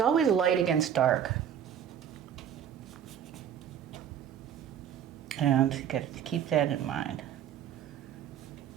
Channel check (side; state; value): left; quieter; 9.2 dB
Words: light against dark. And you got to keep that in mind.